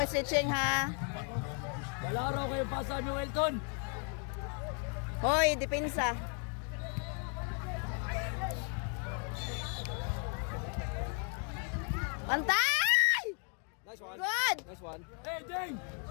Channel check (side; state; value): right; quieter; 39.1 dB